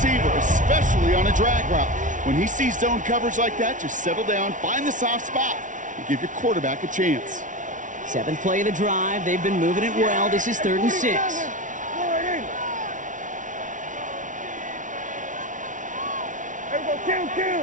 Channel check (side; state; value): left; late; 0.37 ms